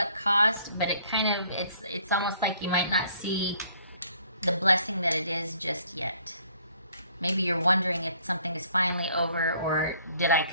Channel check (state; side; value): inverted; both; correlation -0.61